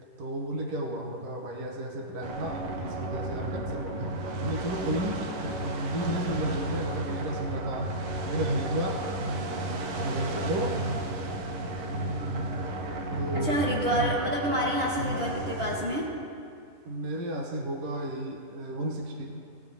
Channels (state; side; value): late; left; 10 ms